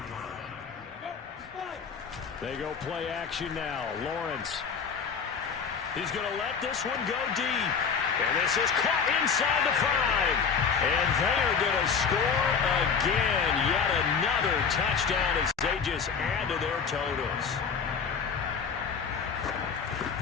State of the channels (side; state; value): right; quieter; 6.2 dB